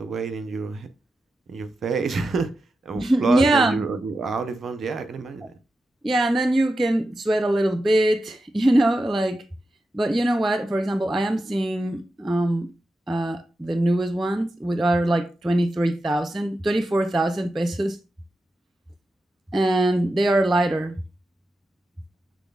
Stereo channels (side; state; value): both; normal; correlation 0.90